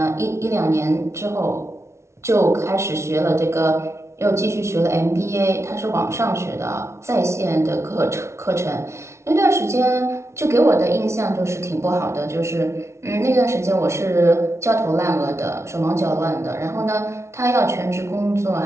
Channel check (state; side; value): late; left; 0.13 ms